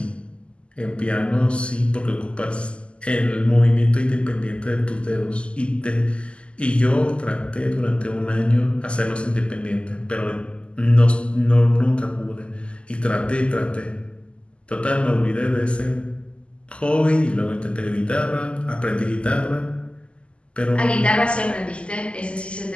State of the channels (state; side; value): late; right; 0.053 ms